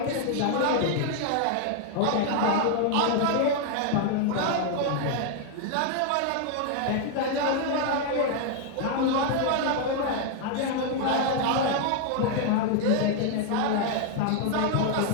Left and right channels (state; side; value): different; both; correlation 0.00